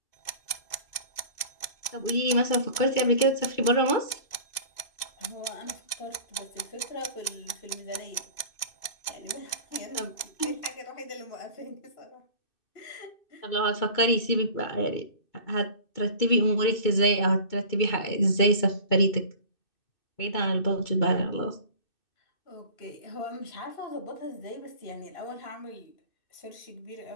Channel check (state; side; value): late; right; 2.6 ms